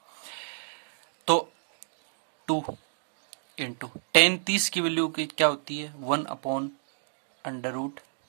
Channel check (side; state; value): left; silent; digital silence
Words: तो 2 इंटू tan 30 की वैल्यू क्या होती है,